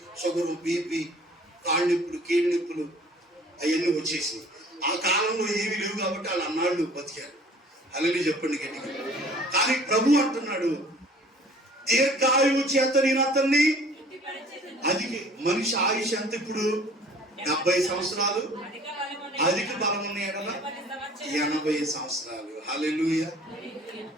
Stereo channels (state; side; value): normal; both; correlation 0.51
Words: షుగరు, బీపీ, కాళ్ళు నొప్పులు, కీళ్ళ నొప్పులు అవన్నీ వచ్చేసి ఆ కాలంలో ఏమీ లేవు కాబట్టి వాళ్ళు అన్నాళ్ళు బతికారు. అలాగే చెప్పండి గట్టిగా. కానీ ప్రభు అంటున్నాడు దీర్ఘాయువు చేత నేను అతన్ని. అది మనిషి ఆయుష్ ఎంత ఇప్పుడు? 70 సంవత్సరాలు, అధిక బలం ఉన్న ఎడల 80 సంవత్సరాలు. హల్లెలూయా.